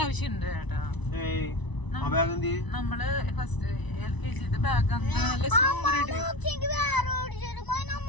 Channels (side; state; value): right; late; 1.0 ms